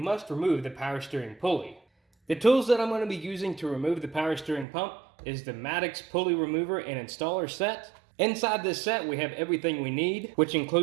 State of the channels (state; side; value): drops out; left; at 4.7 s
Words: remove the power steering pulley. The tools that I'm going to be using to remove the power steering pump is the Maddox pulley remover and installer set. Inside this set, we have everything we need, which